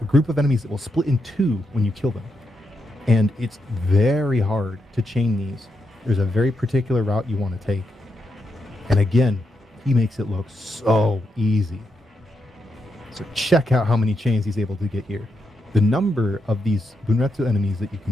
group of enemies that will split in two when you kill them. And it's very hard to chain these. There's a very particular route you want to take. And again, he makes it look so easy. So check out how many chains he's able to get here. The number of these Bunretsu enemies that you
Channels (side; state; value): both; normal; correlation 0.83